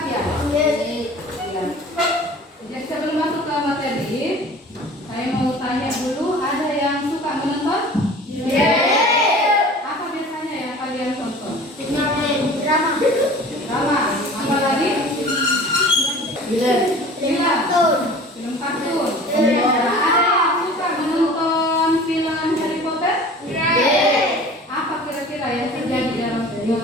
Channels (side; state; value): both; normal; correlation 0.43